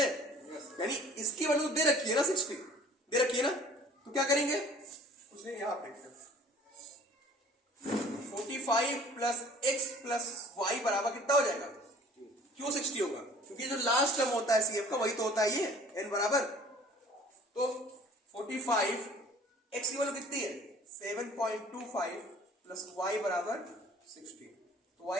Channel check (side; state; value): both; normal; correlation 0.50